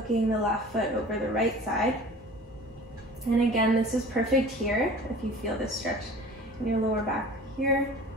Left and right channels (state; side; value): normal; both; correlation 0.42